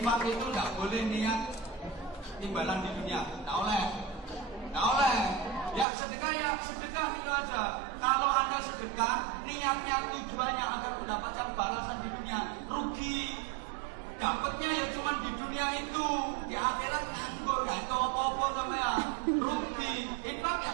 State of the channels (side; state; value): left; drops out; at 5.9 s